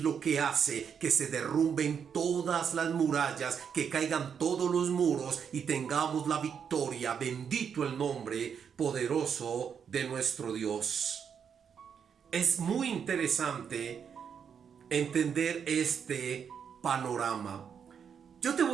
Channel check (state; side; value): quieter; left; 7.3 dB